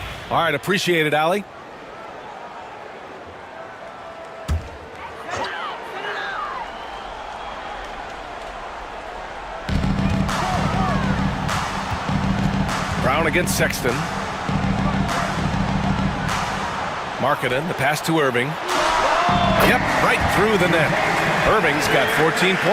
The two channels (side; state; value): both; identical; correlation 1.00